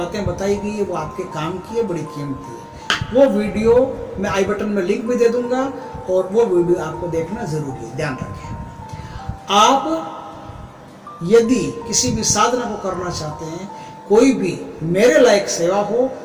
बताई गई है वो आपके काम की है, बड़ी कीमती है। वो वीडियो मैं आई बटन में लिंक भी दे दूंगा, और वो वीडियो आपको देखना जरूरी है। ध्यान रखें, आप यदि किसी भी साधना को करना चाहते हैं, कोई भी मेरे लायक सेवा हो,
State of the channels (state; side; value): identical; both; correlation 1.00